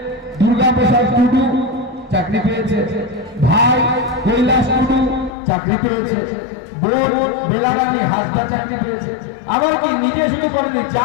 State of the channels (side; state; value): right; drops out; at 5.3 s